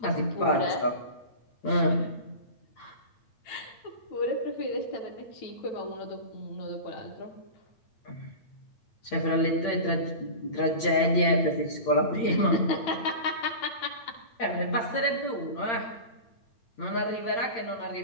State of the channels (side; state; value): right; late; 8.7 ms